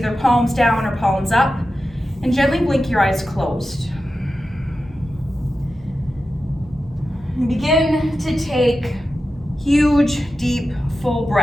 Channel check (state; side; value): normal; both; correlation 0.92